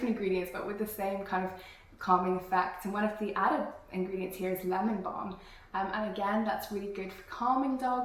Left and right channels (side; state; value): both; identical; correlation 1.00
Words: ingredients but with the same kind of calming effect, and one of the added ingredients here is lemon balm, and again that's really good for calming